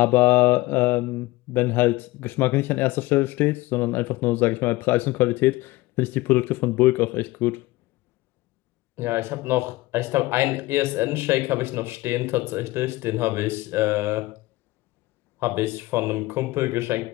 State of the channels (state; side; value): quieter; right; 19.6 dB